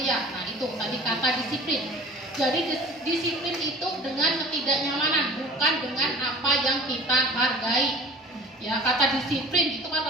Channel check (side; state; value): both; normal; correlation 0.44